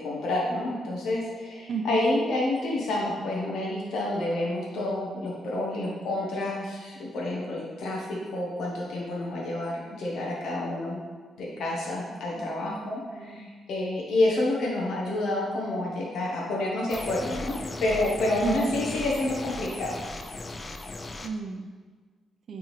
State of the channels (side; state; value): both; normal; correlation 0.76